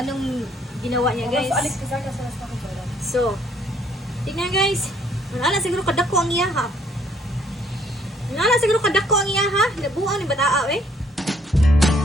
ginawa niya guys. So, tingnan guys. Wala siguro kadako ang iya ha. Wala siguro kadako ang iya ha. Labuan ni bataa eh.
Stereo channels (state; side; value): normal; both; correlation 0.64